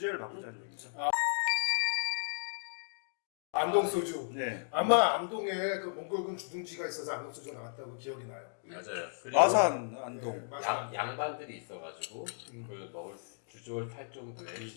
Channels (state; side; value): silent; right; digital silence